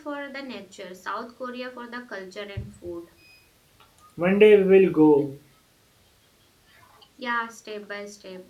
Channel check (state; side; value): identical; both; correlation 1.00